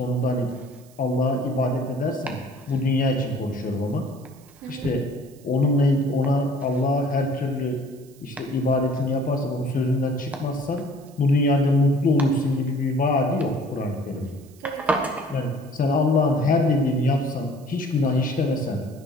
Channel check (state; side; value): noise; right; hiss, 27 dB below the sound